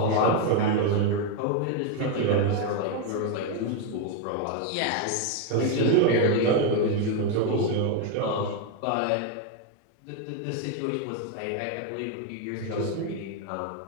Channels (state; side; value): different; both; correlation 0.01